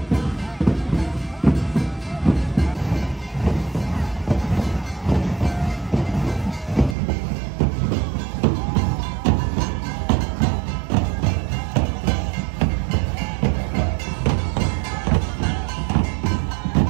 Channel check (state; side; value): drops out; left; at 7.0 s